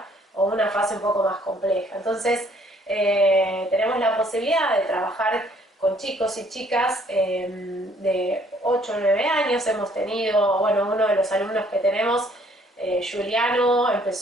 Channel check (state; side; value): normal; both; correlation 0.62